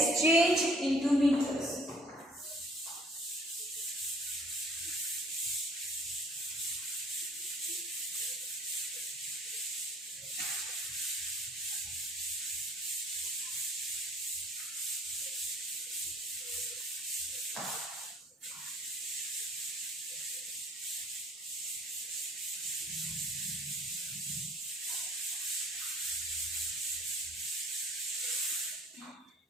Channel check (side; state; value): both; normal; correlation 0.56